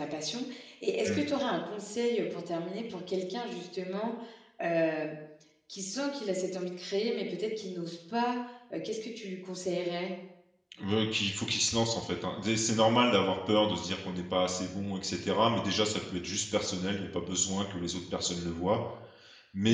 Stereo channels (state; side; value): identical; both; correlation 1.00